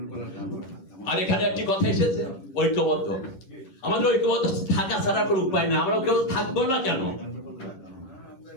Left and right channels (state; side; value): late; right; 10 ms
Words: আর এখানে একটি কথা এসেছে, ঐক্যবদ্ধ। আমাদের ঐক্যবদ্ধ থাকা ছাড়া কোনো উপায় না, আমরা কেউ থাকবো না কেন?